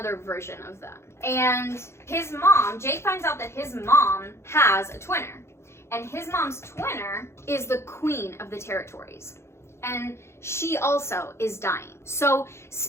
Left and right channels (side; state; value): right; late; 0.13 ms